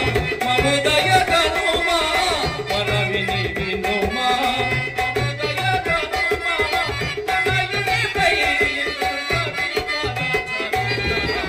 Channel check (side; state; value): both; identical; correlation 1.00